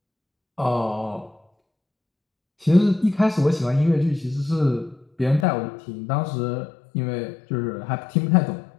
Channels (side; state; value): right; drops out; at 5.5 s